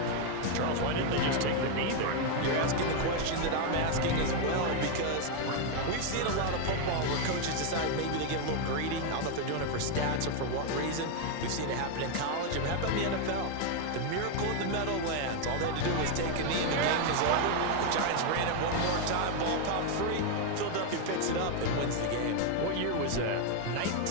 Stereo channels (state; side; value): different; both; correlation 0.01